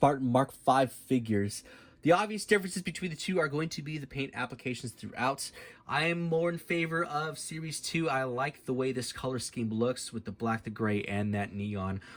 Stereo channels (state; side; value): identical; both; correlation 1.00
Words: Mark V figures. The obvious differences between the two are going to be the paint applications throughout. I am more in favor of Series 2. I like the way this color scheme looks with the black, the gray, and that neon.